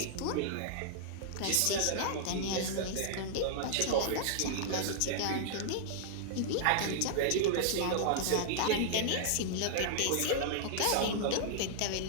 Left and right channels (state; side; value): different; both; correlation -0.01